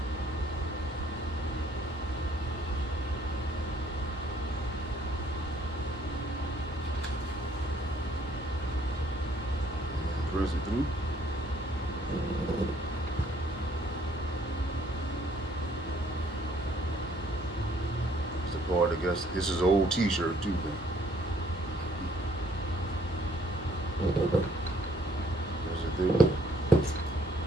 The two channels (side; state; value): both; normal; correlation 0.63